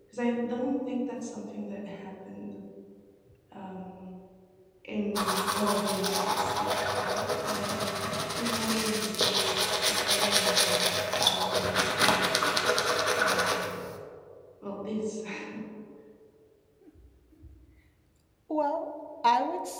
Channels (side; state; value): both; identical; correlation 1.00